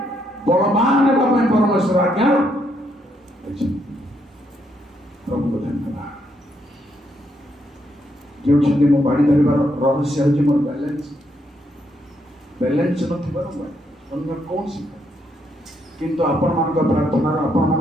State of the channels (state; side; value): normal; both; correlation 0.76